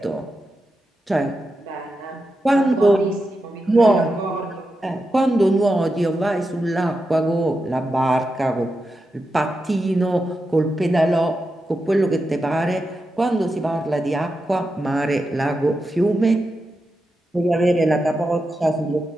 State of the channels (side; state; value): both; normal; correlation 0.88